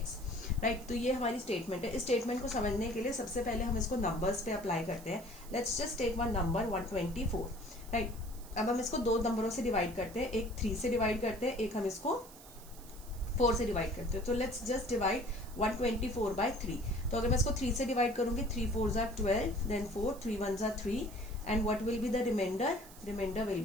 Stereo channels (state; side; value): noise; right; hiss, 19 dB below the sound